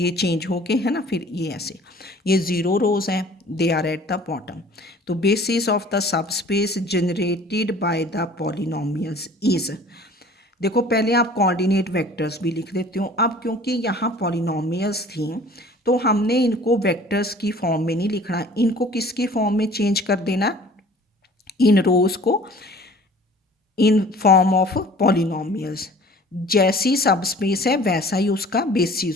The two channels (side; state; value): both; normal; correlation 0.49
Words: चेंज हो के है ना, फिर ये ऐसे, ये 0 रोज हैं, they are at the bottom. तो basis of the subspace generated by the polynomials is, देखो पहले आप कोऑर्डिनेट वेक्टर्स भी लिख देते हो। अब क्योंकि यहाँ पॉलिनोमियल्स थी तो हमने इनको वेक्टर्स की फॉर्म में नहीं लिखना, इनको किसकी फॉर्म में चेंज कर देना, इन रोज को इन फॉर्म ऑफ पॉलिनोमियल्स। जैसी सब स्पेस है वैसा ही उसका